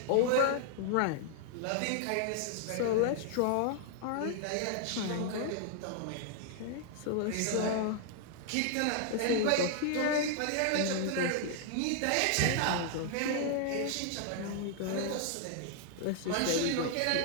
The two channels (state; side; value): different; both; correlation -0.01